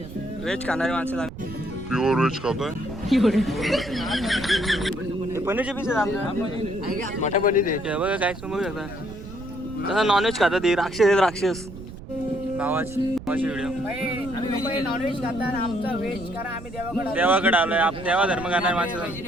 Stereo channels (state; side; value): noise; right; rumble, 13 dB below the sound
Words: व्हेज खाणारी माणसं प्युअर व्हेज खातोय पनीरचे पीस आहेत आमच्या मोठ्या पनीर आहे बघा काय समजू शकता तसं नॉनव्हेज खातात ही राक्षस आहेत राक्षस भावाची व्हिडिओ देवाकडे आलोय देवा धर्म करणारे माणसं